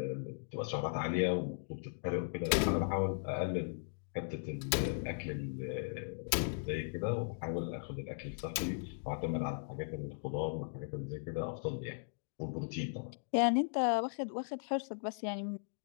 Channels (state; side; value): silent; right; digital silence